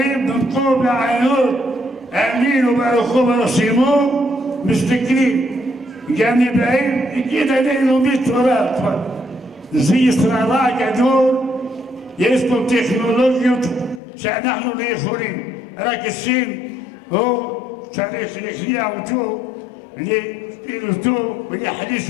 במקום לענות האמינו ברחוב הרשימו מסתכלים גם נבאים יגיד עלינו מתורה זה ישראלה גדול יש פה טכנולוגיות שאנחנו לא יכולים רק השם הוא צריך להכניע אותו להפעיל אותו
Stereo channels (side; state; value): right; drops out; at 14.0 s